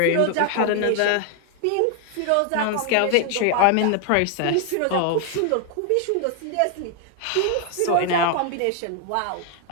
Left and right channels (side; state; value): both; different; correlation 0.00